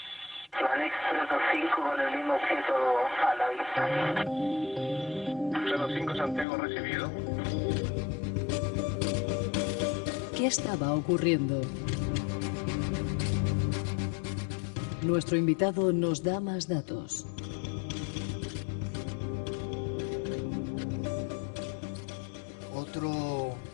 Alex 325 con el mismo objeto a la vista. 325 Santiago recibido. ¿Qué estaba ocurriendo? Nuestro invitado nos da más datos.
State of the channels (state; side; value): drops out; right; at 6.5 s